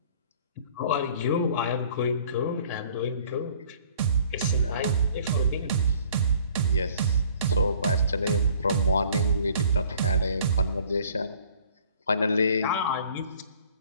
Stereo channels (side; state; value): both; inverted; correlation -0.54